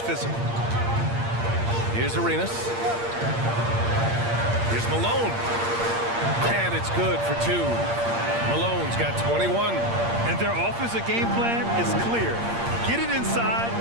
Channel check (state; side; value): late; left; 8.6 ms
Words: physical. Here's Arenas. Here's Malone. And it's good for 2. Malone's got 21. And their offensive game plan is clear. Get it inside